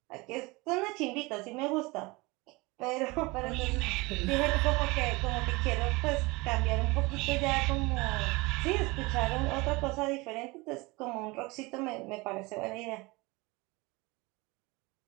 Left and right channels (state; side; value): quieter; left; 24.1 dB